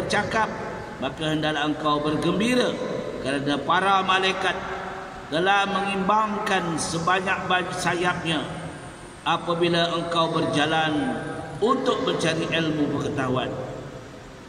maka hendaklah engkau bergembira kerana para malaikat telah mengimbangkan sebanyak-banyak sayapnya apabila engkau berjalan untuk mencari ilmu pengetahuan.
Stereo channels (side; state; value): both; identical; correlation 1.00